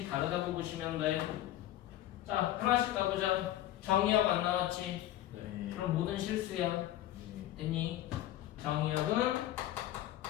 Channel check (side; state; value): right; quieter; 13.7 dB